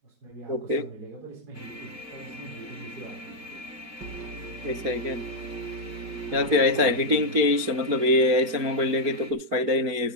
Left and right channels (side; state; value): left; late; 4.4 ms